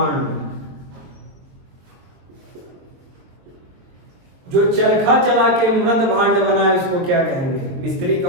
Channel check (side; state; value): left; late; 23 ms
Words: जो चरखा चला के मृद भांड बनाए उसको क्या कहेंगे? मिस्त्री